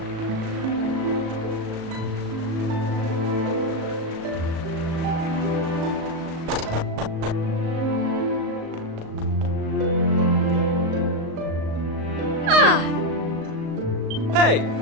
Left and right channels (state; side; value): late; left; 37 ms